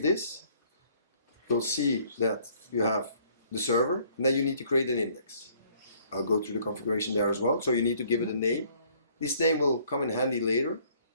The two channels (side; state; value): both; inverted; correlation -0.61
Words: this, you'll see that you have the server, and then you need to create an index. I'll go through the configuration there as well. So you need to give it a name. This name will come in handy later.